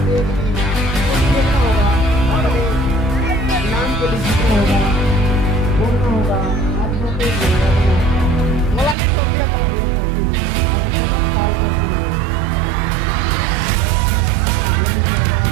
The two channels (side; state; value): left; drops out; at 9.0 s